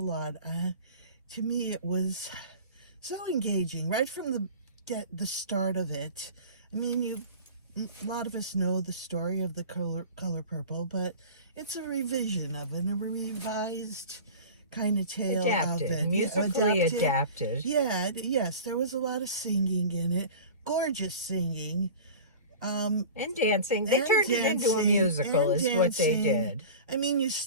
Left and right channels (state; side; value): inverted; both; correlation -0.37